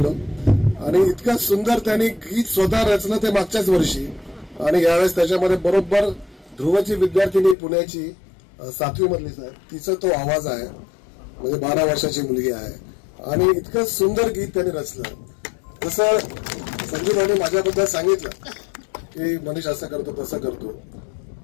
आणि इतकं सुंदर त्यांनी गीत स्वतः रचलं ते मागच्याच वर्षी. आणि यावेळेस त्याच्यामध्ये बरोबर ध्रुवची विद्यार्थिनी पुण्याची 7वी मधली साहेब, तिचा तो आवाज आहे, म्हणजे 12 वर्षाची मुलगी आहे. आणि इतकं सुंदर गीत त्यांनी रचलं. तसं संजीवभाऊने माझ्याबद्दल सांगितलं की मनीष असं करतो तसं करतो,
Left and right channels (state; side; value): drops out; right; at 7.6 s